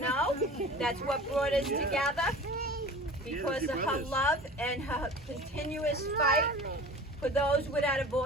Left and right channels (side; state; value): both; normal; correlation 0.39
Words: That's what brought us together. Because of her love and her continuous fight for those without a